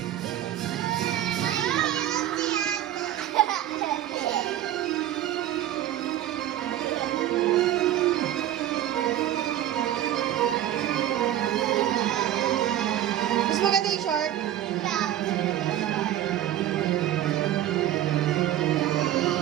Mas maganda yung short.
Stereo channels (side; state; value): left; quieter; 12.3 dB